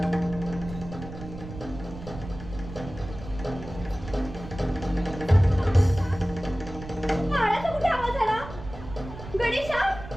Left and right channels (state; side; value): noise; right; rumble, 12 dB below the sound